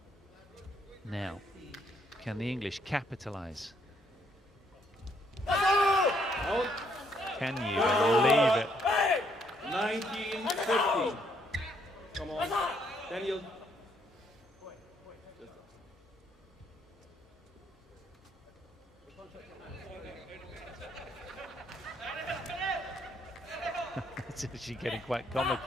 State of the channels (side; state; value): both; normal; correlation 0.71